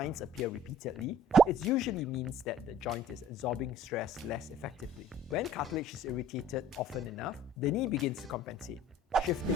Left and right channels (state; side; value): normal; both; correlation 0.51